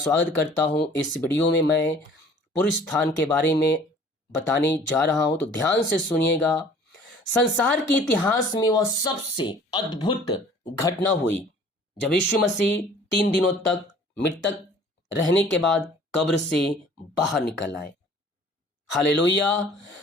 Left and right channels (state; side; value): normal; both; correlation 0.51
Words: करता हूं। इस वीडियो में मैं पूर्ण स्थान के बारे में बताने जा रहा हूं, तो ध्यान से सुनिएगा। संसार के इतिहास में वह सबसे अद्भुत घटना हुई जब यीशु मसीह 3 दिनों तक मृतक रहने के बाद कब्र से बाहर निकल आए। हालेलुया।